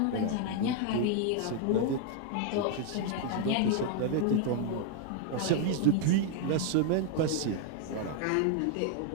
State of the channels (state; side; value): different; both; correlation 0.00